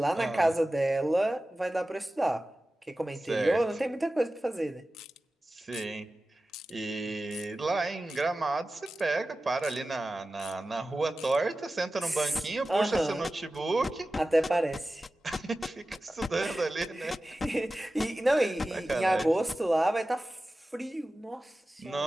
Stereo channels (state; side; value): normal; both; correlation 0.95